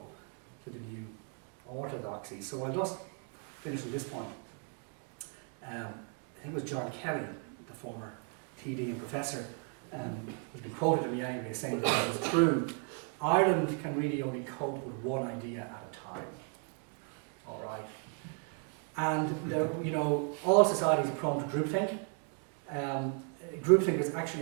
to the new orthodoxy. So I'll just finish at this point. I think it was John Kelly, the former TD and professor, who's been quoted to me anyway, saying that it was true. Ireland can really only cope with one idea at a time. All right. And you know, all societies are prone to groupthink. Groupthink was actually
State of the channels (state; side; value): quieter; left; 38.1 dB